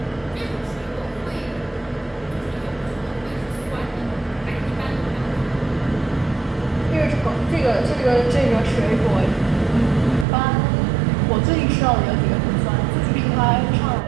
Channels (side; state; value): left; drops out; at 10.2 s